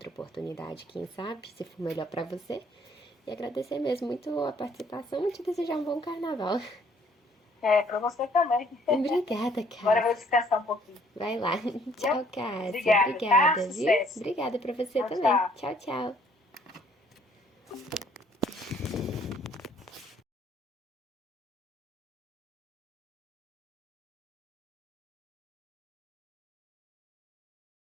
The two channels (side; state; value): both; normal; correlation 0.62